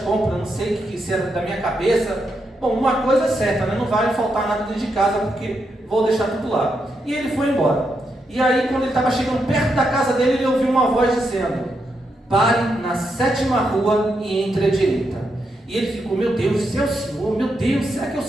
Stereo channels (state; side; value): normal; both; correlation 0.82